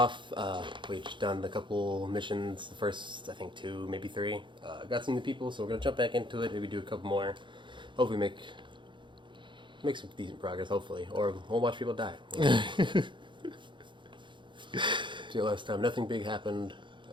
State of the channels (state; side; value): late; left; 0.23 ms